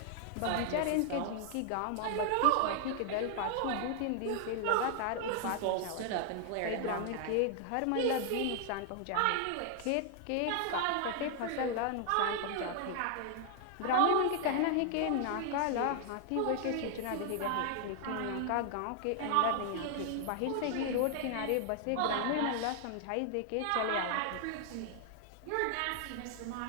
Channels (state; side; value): different; both; correlation 0.00